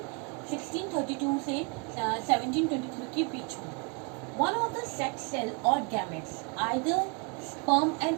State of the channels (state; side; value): quieter; left; 33.7 dB